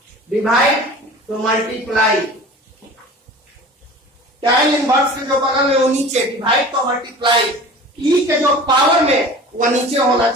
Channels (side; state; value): both; normal; correlation 0.40